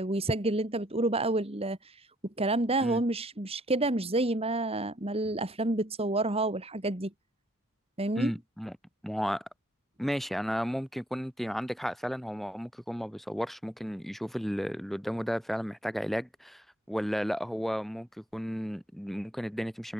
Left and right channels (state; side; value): normal; both; correlation 0.66